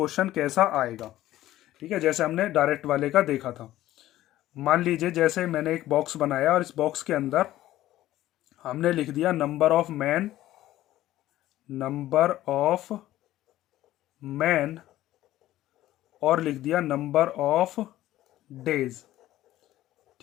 कैसा आएगा। ठीक है, जैसे हमने डायरेक्ट वाले का देखा था। मान लीजिए जैसे मैंने एक बॉक्स बनाया और इस बॉक्स के अंदर हमने लिख दिया नंबर ऑफ मैन और लिख दिया नंबर ऑफ डेज।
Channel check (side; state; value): right; quieter; 14.6 dB